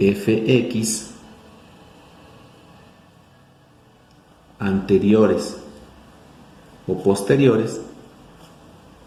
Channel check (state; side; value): identical; both; correlation 1.00